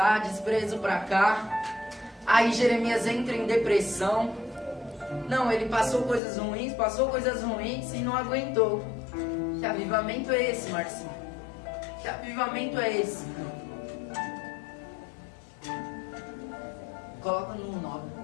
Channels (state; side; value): drops out; right; at 6.2 s